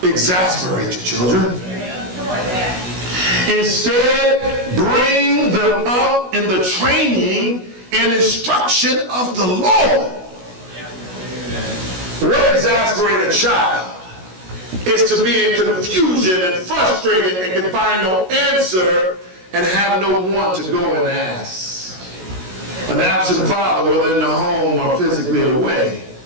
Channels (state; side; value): late; left; 16 ms